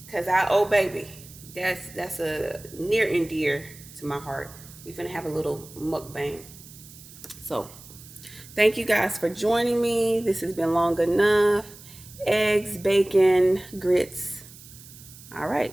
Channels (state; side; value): noise; right; hiss, 19 dB below the sound